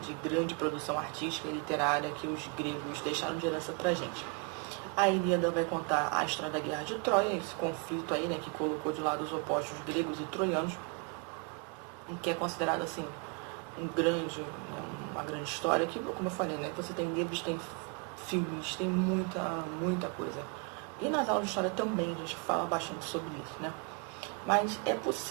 grande produção artística e literária que os gregos deixaram de herança pra gente. A Ilíada vai contar a história da Guerra de Troia, esse conflito aí, né, que colocou de lado os opostos gregos e troianos, que é considerado assim uma grande história, que, como eu falei, né, você tem livros, tem filmes, tem muita coisa. E nas aulas de história também a gente fala bastante sobre isso, né? Mas é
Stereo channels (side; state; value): left; quieter; 33.0 dB